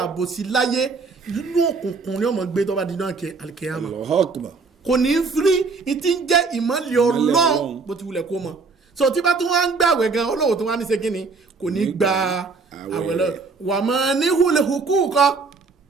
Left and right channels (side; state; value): left; quieter; 4.4 dB